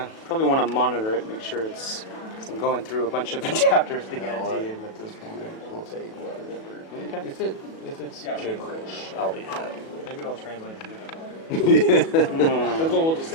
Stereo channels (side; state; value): right; late; 37 ms